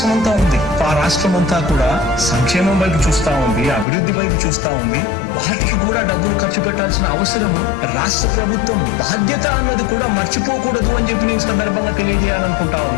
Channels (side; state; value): right; drops out; at 3.9 s